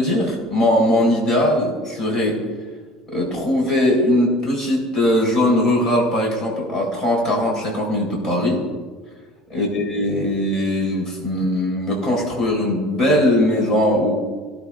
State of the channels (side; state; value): both; normal; correlation 0.44